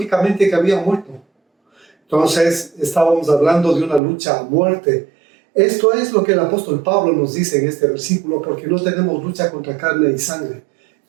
que habían muerto. Entonces, estábamos hablando de una lucha a muerte. Esto es lo que el apóstol Pablo nos dice en este versículo, porque no tenemos lucha contra carne y sangre.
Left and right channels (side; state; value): left; drops out; at 4.0 s